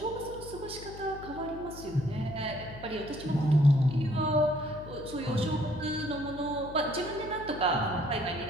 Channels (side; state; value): left; noise; hum, 14 dB below the sound